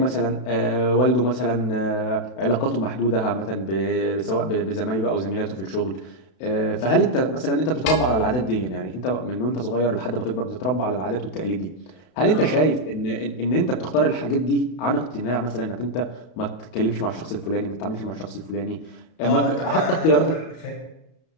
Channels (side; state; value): right; late; 32 ms